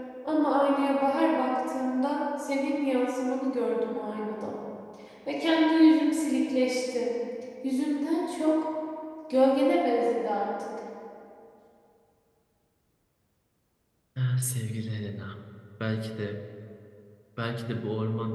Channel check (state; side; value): identical; both; correlation 1.00